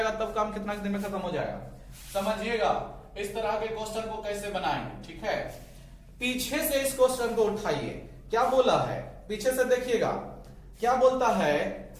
तब काम कितना दिन में खत्म हो जाएगा। समझिएगा इस तरह के क्वेश्चन को कैसे बनाएंगे, ठीक है। पीछे से इस क्वेश्चन को उठाइए, क्या बोला है पीछे से देखिएगा, क्या बोलता है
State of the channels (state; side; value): identical; both; correlation 1.00